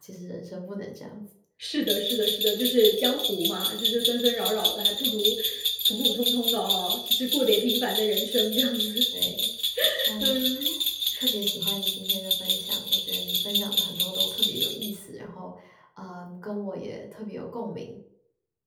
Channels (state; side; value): identical; both; correlation 1.00